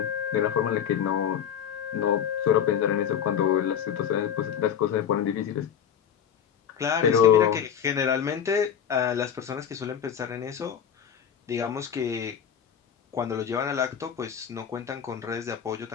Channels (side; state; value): right; quieter; 8.5 dB